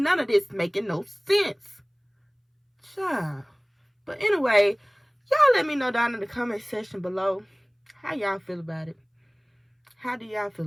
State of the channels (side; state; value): both; identical; correlation 1.00